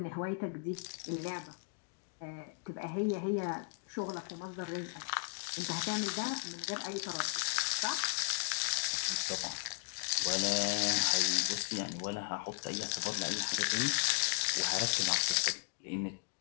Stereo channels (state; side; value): quieter; right; 34.7 dB